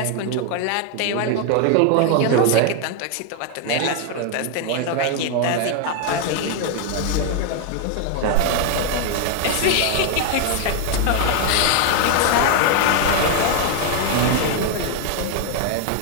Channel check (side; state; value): both; different; correlation 0.00